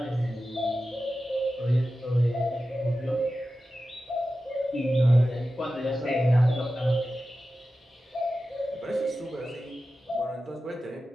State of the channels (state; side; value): normal; both; correlation 0.93